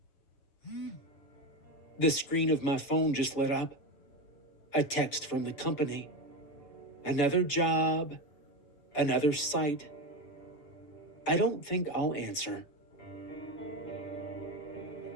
The screen of my phone just lit up. A text from the company. Another job, another site. I don't think I'll answer.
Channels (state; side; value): late; right; 7.0 ms